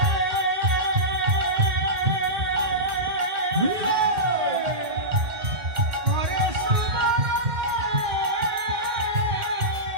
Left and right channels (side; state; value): left; late; 1.9 ms